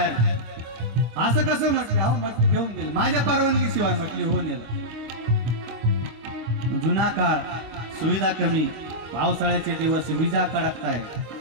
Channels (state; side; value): late; left; 25 ms